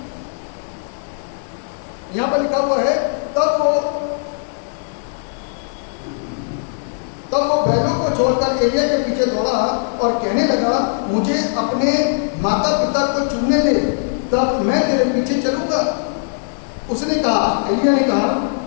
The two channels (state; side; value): silent; right; 66 dB below the other